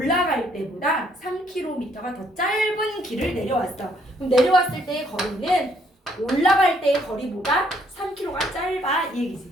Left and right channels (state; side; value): normal; both; correlation 0.67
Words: 때보다 3km가 더 짧은 길을 내려왔어. 그럼 내려왔을 때의 거리는 올라갈 때의 거리보다 3km가 짧아. 이 얘기지.